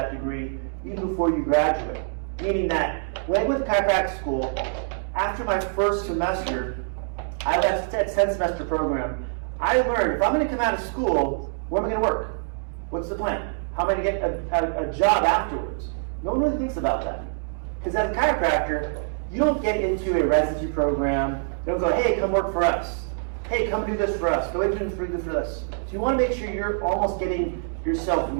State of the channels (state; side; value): silent; left; digital silence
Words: degree even before you graduate? Meaning that when I went to chiropractic school, after my first semester, I left that 10 semester program. I learned if I'm going to come out of school, where am I going to work? What's the plan? How am I going to get a job afterwards? No one really thinks about that. Because as a chiropractor, you don't get into a residency program. You don't go, hey, come work for us. Hey, come do this for us. Go into for this. So you want to make sure you're almost getting yourself